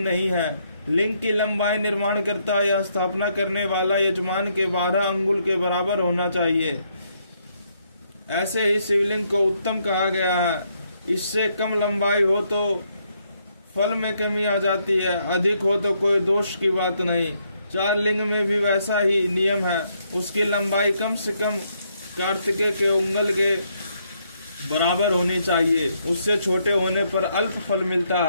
है। लिंग की लंबाई निर्माण करता या स्थापना करने वाला यजमान के 12 अंगुल के बराबर होना चाहिए। ऐसे ही शिवलिंग को उत्तम कहा गया है। इससे कम लंबाई हो तो फल में कमी आ जाती है, अधिक हो तो कोई दोष की बात नहीं। 4 लिंग में भी वैसा ही नियम है। उसकी लंबाई कम से कम कार्तिकेय के उंगल के बराबर होनी चाहिए। उससे छोटे होने पर अल्प फल मिलता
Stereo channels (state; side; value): inverted; both; correlation -0.74